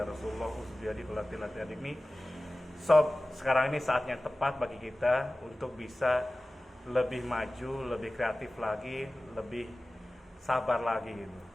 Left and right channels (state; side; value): normal; both; correlation 0.97